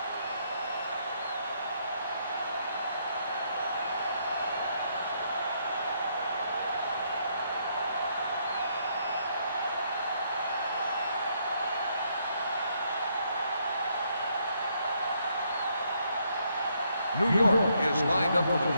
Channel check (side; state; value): both; inverted; correlation -0.73